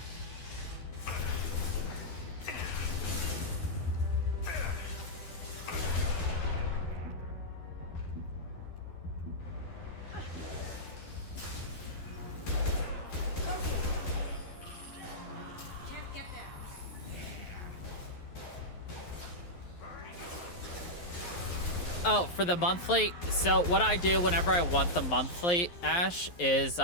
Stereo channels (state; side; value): late; right; 11 ms